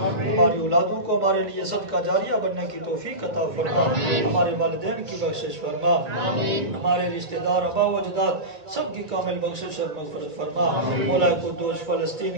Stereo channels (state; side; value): late; left; 2.3 ms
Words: ہماری اولادوں کو ہمارے لیے صدقہ جاریہ بننے کی توفیق عطا فرما، ہمارے والدین کی بخشش فرما، ہمارے رشتہ دار آبا و اجداد سب کی کامل بخشش اور مغفرت فرما، مولا قدوس